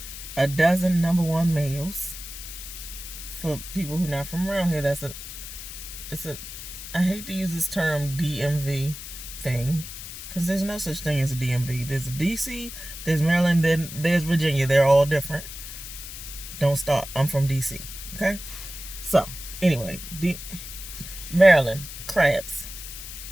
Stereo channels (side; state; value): left; noise; hiss, 11 dB below the sound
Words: a dozen number one males. For people who are not from around here, I hate to use this term DMV thing, because there's no such thing as a DMV. There's a DC, there's Maryland, then there's Virginia. They're all different. Don't start. I'm from DC. Okay? So, anyway, Maryland, crabs.